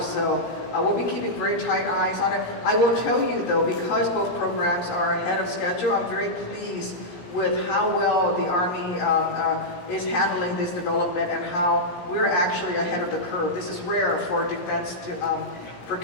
So we'll be keeping very tight eyes on it. I will tell you though, because both programs are ahead of schedule, I'm very pleased with how well the Army is handling this development and how we're actually ahead of the curve. This is rare for defense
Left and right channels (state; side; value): late; right; 17 ms